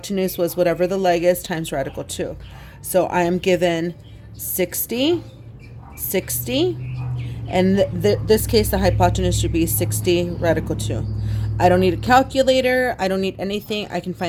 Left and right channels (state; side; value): identical; both; correlation 1.00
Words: was whatever the leg is times radical 2. So I am given 60, 60, and this case the hypotenuse should be 60 radical 2. I don't need a calculator. I don't need anything. I can